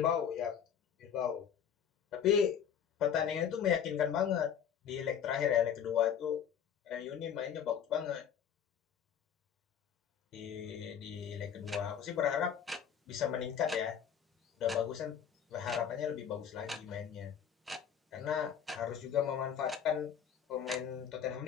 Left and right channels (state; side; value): quieter; right; 8.3 dB